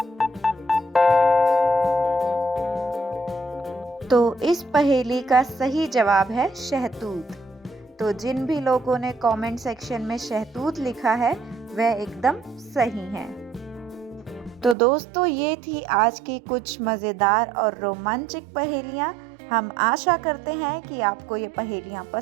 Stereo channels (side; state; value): left; drops out; at 14.8 s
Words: तो इस पहेली का सही जवाब है शहतूत। तो जिन भी लोगों ने कमेंट सेक्शन में शहतूत लिखा है वह एकदम सही हैं। तो दोस्तों, ये थी आज की कुछ मज़ेदार और रोमांचक पहेलियाँ। हम आशा करते हैं कि आपको ये पहेलियाँ